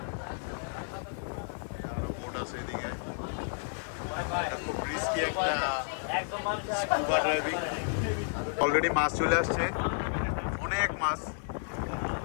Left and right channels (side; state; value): right; silent; digital silence